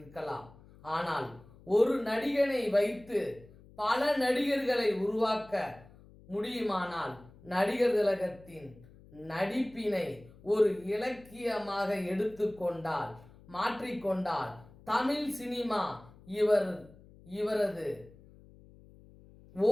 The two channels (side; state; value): left; noise; hum, 23 dB below the sound